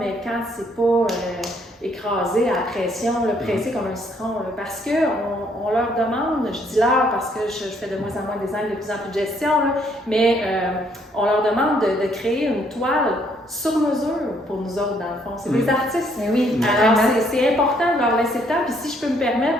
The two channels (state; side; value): normal; both; correlation 0.68